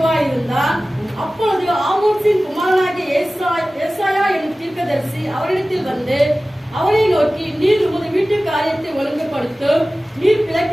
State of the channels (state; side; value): normal; both; correlation 0.97